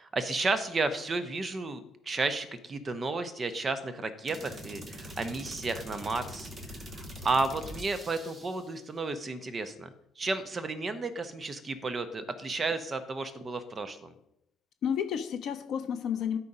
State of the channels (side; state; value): both; normal; correlation 0.78